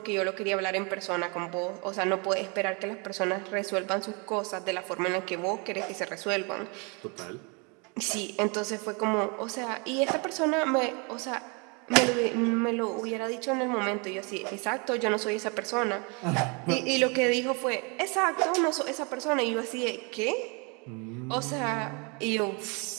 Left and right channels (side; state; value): left; quieter; 32.2 dB